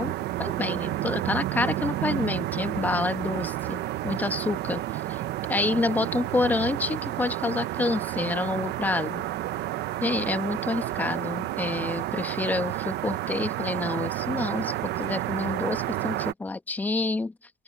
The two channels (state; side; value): normal; both; correlation 0.50